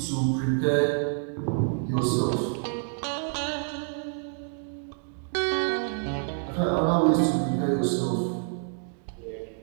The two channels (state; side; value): silent; left; 56 dB below the other